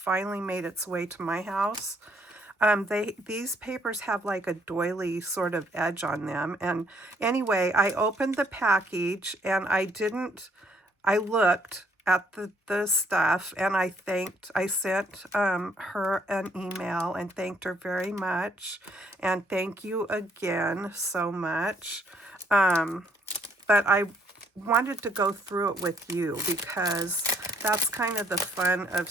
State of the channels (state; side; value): normal; both; correlation 0.68